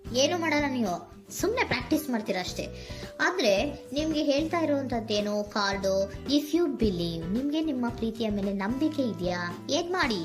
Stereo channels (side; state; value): both; identical; correlation 1.00